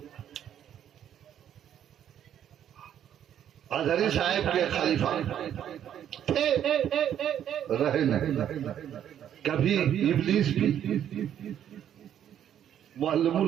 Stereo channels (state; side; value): quieter; left; 10.0 dB